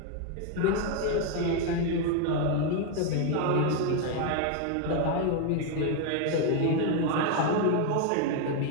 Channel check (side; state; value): both; different; correlation 0.01